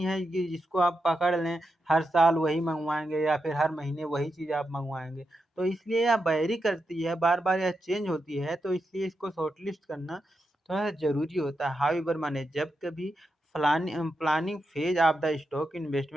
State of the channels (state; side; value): normal; both; correlation 0.86